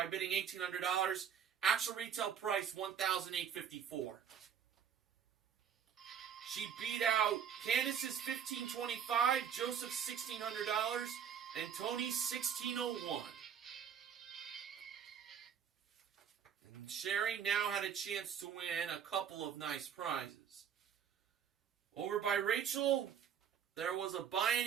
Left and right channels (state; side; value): quieter; left; 8.2 dB